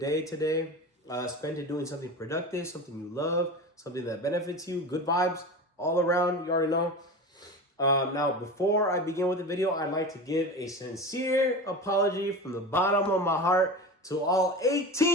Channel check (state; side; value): normal; both; correlation 0.29